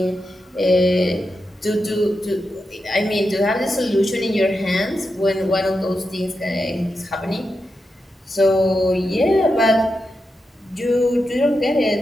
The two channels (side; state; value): both; normal; correlation 0.88